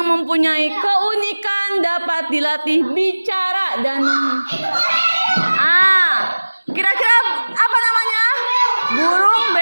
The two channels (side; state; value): both; inverted; correlation -1.00